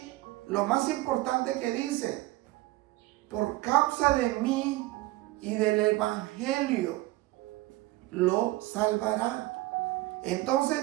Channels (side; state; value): left; quieter; 18.9 dB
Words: lo más importante que dice, por causa de mí y del evangelio lo salvará. Entonces,